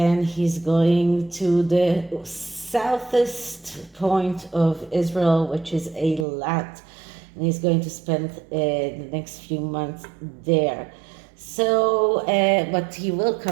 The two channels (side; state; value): left; drops out; at 6.2 s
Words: he's going to the southest point of Israel, which is Eilat, and he's going to spend the next few months there. So, but he will